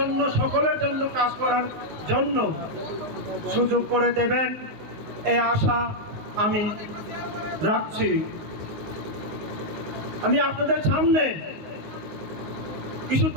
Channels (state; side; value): late; left; 19 ms